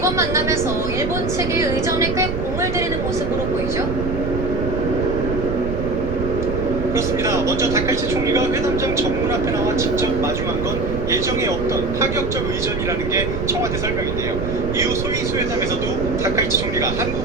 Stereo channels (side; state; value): right; noise; rumble, 4 dB below the sound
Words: 만남에서 일본 측의 의전에 꽤 공을 들이는 모습으로 보이죠? 그렇습니다. 먼저 다카이치 총리가 회담장 정문 앞에 나와 직접 마주한 건 예정에 없던 파격적 의전이라는 게 청와대 설명인데요. 이후 소위 회담에서도 다카이치 총리가